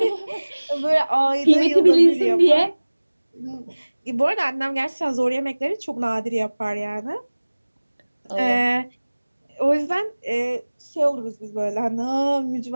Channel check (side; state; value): both; inverted; correlation -1.00